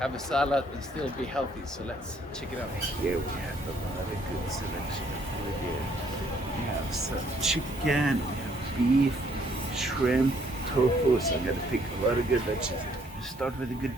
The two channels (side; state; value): both; normal; correlation 0.66